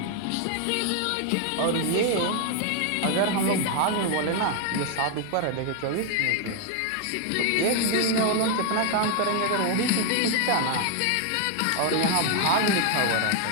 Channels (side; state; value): both; different; correlation 0.00